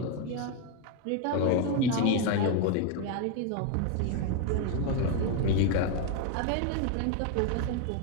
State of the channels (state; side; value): different; both; correlation 0.01